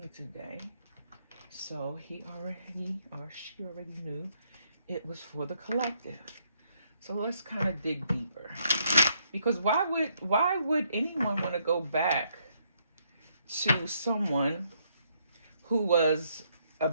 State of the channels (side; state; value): both; inverted; correlation -0.72